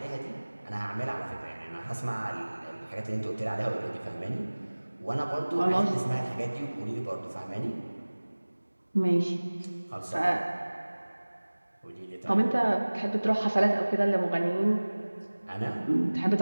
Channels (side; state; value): both; inverted; correlation -1.00